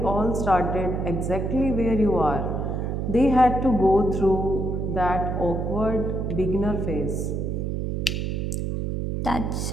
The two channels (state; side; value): noise; right; hum, 1 dB below the sound